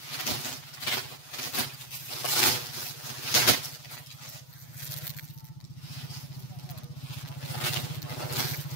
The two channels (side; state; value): right; late; 8.2 ms